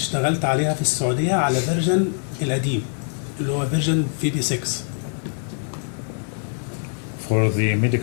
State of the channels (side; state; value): right; silent; 58 dB below the other